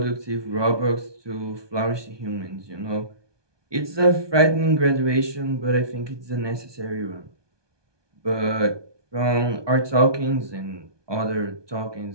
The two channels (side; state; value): left; late; 1.2 ms